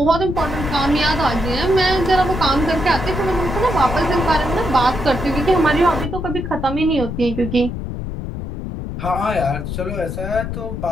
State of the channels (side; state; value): left; noise; rumble, 6 dB below the sound